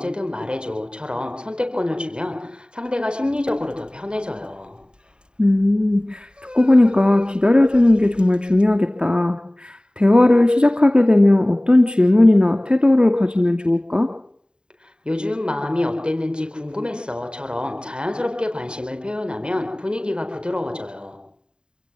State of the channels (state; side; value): late; left; 0.049 ms